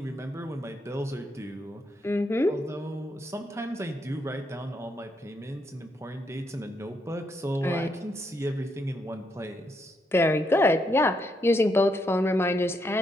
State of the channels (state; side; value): normal; both; correlation 0.78